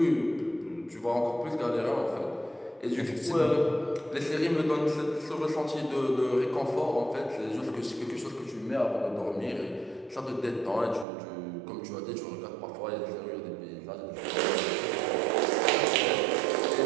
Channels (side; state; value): left; drops out; at 11.1 s